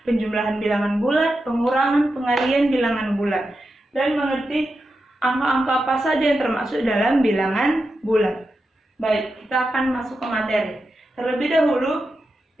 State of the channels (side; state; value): both; normal; correlation 0.89